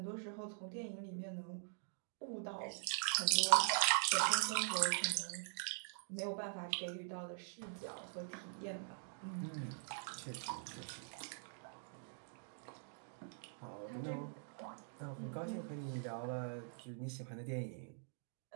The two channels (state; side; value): silent; left; digital silence